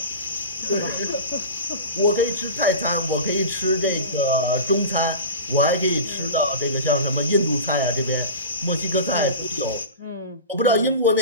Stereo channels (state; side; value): inverted; both; correlation -0.31